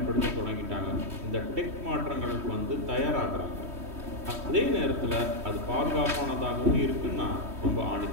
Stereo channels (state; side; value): late; left; 3.1 ms